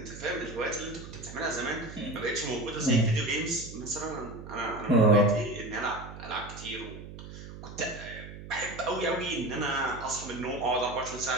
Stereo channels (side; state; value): right; noise; hum, 12 dB below the sound